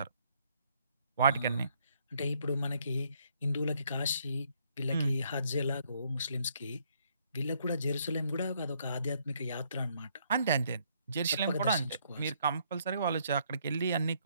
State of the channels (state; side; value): inverted; both; correlation -0.69